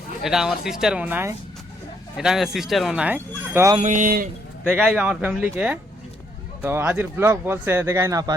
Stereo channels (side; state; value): both; normal; correlation 0.71